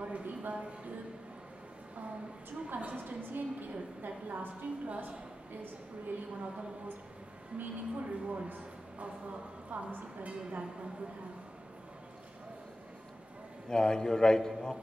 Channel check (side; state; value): both; normal; correlation 0.93